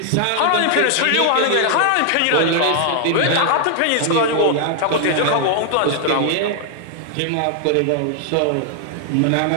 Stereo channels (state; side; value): different; both; correlation 0.00